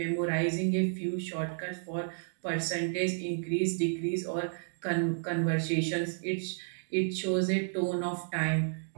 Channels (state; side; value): silent; left; digital silence